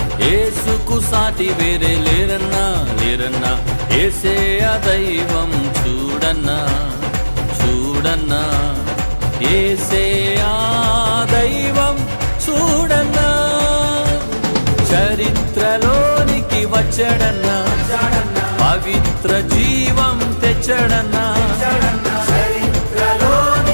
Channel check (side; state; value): both; inverted; correlation -1.00